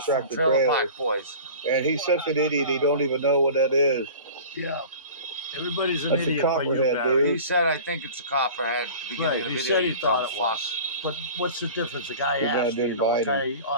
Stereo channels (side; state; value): both; inverted; correlation -0.39